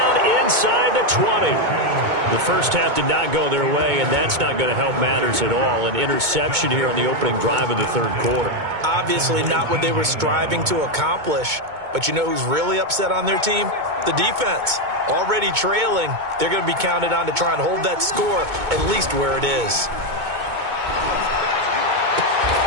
inside the 20. The first half did not go their way, and that's not going to help matters at all. An interception here on the opening drive of the third quarter. Obviously not what they were striving to accomplish. But you know who's really upset on their team? The defense. Already trailing, they're going to be counted on to try and hold that score at least where it is.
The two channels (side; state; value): left; late; 2.2 ms